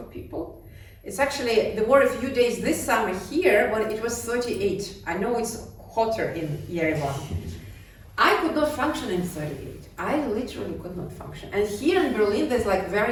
people. It's actually, there were a few days this summer here when it was 38. I know it's hotter in Yerevan. I could not function in 38. I literally could not function. And here in Berlin, there's like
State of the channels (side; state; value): both; identical; correlation 1.00